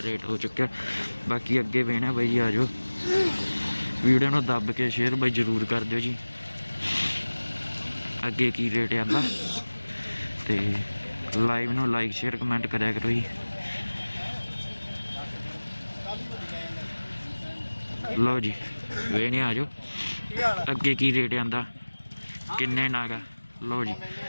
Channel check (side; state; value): both; inverted; correlation -1.00